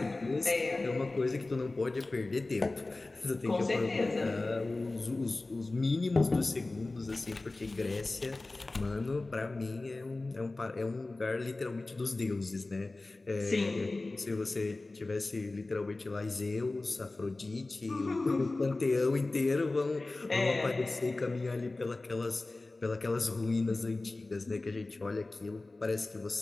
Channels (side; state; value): right; quieter; 3.1 dB